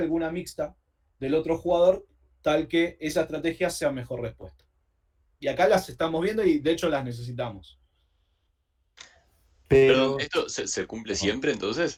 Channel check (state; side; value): identical; both; correlation 1.00